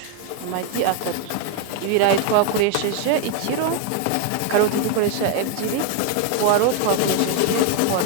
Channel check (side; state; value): both; different; correlation 0.01